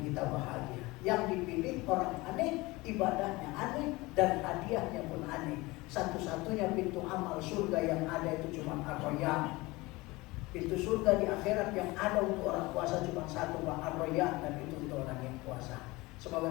kita bahagia. Yang dipilih orang aneh, ibadahnya aneh, dan hadiahnya pun aneh. Satu-satunya pintu amal surga yang ada itu cuma ar-royan. Pintu surga di akhirat yang ada untuk orang puasa cuma satu, ar-royan, dan itu untuk orang yang puasa.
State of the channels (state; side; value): quieter; right; 21.9 dB